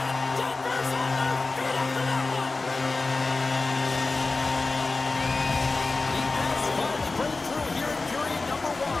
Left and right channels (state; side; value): quieter; right; 3.6 dB